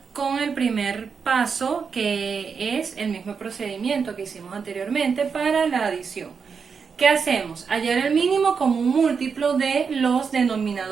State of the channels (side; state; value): left; quieter; 5.8 dB